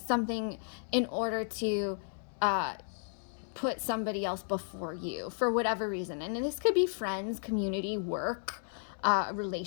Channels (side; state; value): right; silent; digital silence